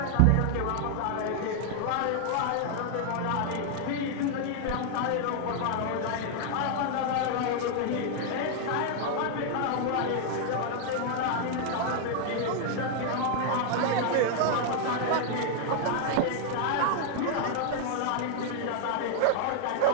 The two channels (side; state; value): both; different; correlation 0.00